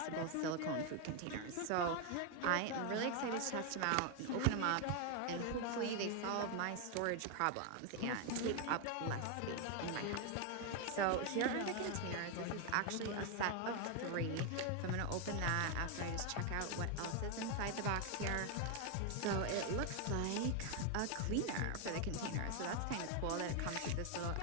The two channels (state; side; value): different; both; correlation 0.01